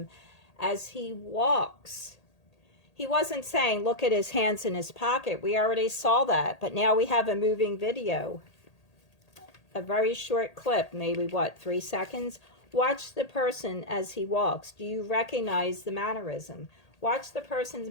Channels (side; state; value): right; late; 1.8 ms